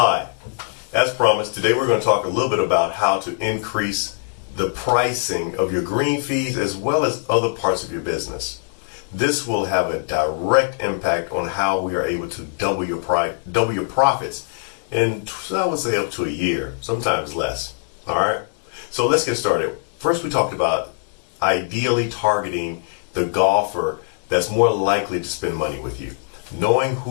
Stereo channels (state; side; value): silent; right; digital silence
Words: as promised, today we're going to talk a little bit about how to increase the pricing of your green fees as well as other parts of your business. This will have a direct impact on how we are able to double your profits in, I would say, up to a year, sometimes less. All right, so let's get started. First, we talked about ideally targeting the golfer that's more likely to spend money with you, knowing